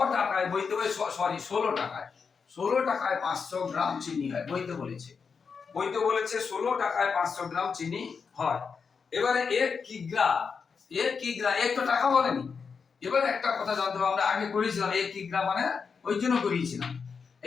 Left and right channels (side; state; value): right; quieter; 5.7 dB